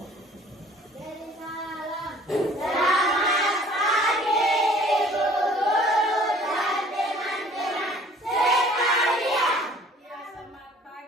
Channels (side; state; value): both; normal; correlation 0.53